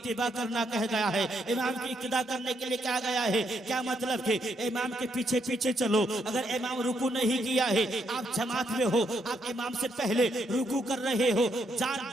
करना कह गया है। इमाम की इक्तिदा करने के लिए कहा गया है। क्या मतलब कि इमाम के पीछे पीछे चलो। अगर इमाम रुकू नहीं किया है, आप जमात में हो, आप इमाम से पहले रुकू कर रहे हो,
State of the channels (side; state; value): both; normal; correlation 0.76